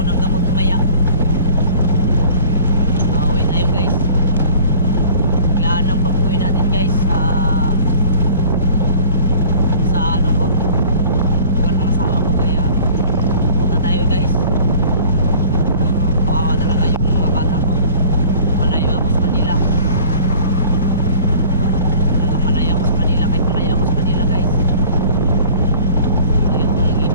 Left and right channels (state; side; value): inverted; both; correlation -0.47